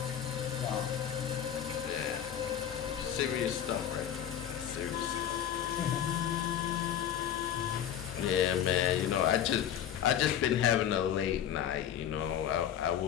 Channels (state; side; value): quieter; right; 9.8 dB